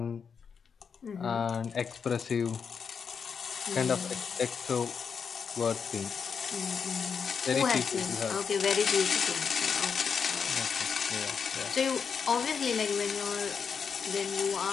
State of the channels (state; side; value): quieter; right; 6.3 dB